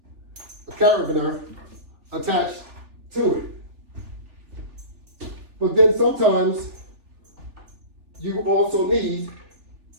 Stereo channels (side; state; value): left; late; 3.4 ms